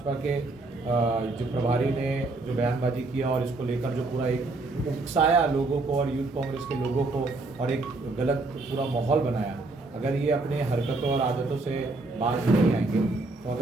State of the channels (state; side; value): quieter; left; 3.3 dB